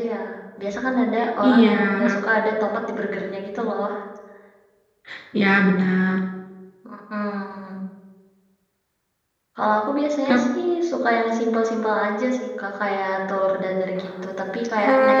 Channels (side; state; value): both; identical; correlation 1.00